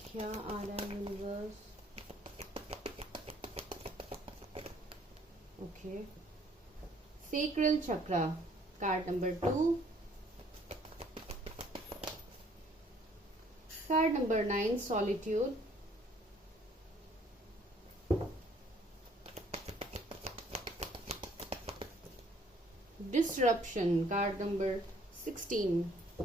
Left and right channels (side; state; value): both; normal; correlation 0.60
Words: क्या आ रहा है universe. Okay, sacral chakra card number 2, card number 9 solitude, disruption card number 16।